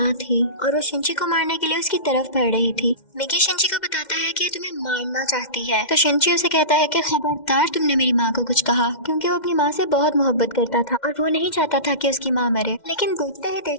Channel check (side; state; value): right; late; 2.1 ms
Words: थी और वो शिंची को मारने के लिए उसकी तरफ बढ़ रही थी। मिगी शिंची को बताता है कि ये तुम्हें मारना चाहती है तो शिंची उसे कहता है कि खबरदार तुमने मेरी माँ को कुछ कहा क्योंकि वो अपनी माँ से बहुत मोहब्बत करता था और वो नहीं चाहता था कि उसकी माँ मरे। लेकिन देखते ही